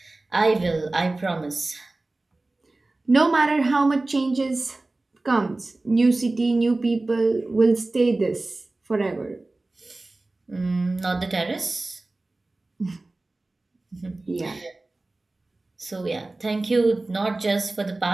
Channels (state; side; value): quieter; left; 3.0 dB